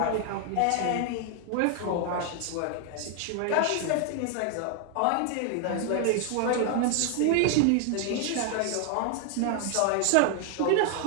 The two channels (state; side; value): different; both; correlation 0.00